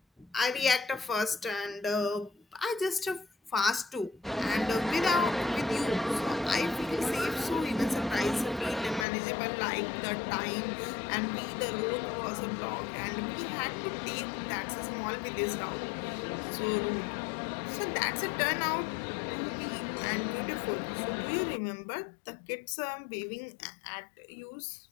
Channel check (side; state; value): right; drops out; at 9.1 s